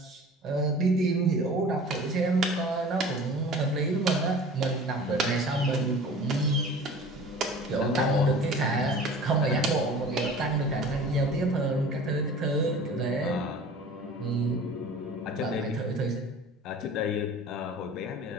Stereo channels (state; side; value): normal; both; correlation 0.42